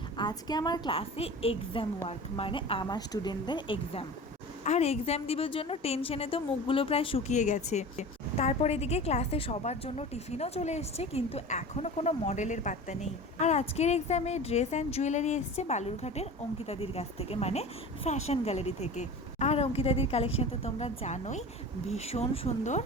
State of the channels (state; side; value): normal; both; correlation 0.35